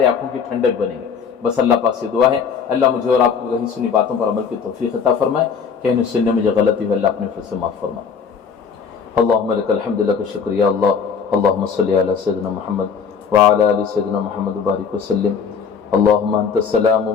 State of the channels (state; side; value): quieter; right; 6.3 dB